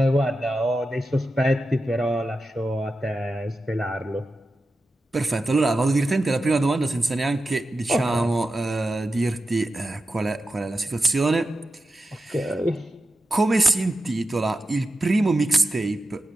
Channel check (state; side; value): normal; both; correlation 0.91